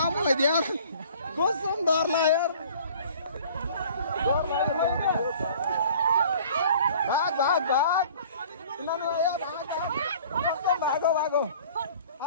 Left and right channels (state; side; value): inverted; both; correlation -0.49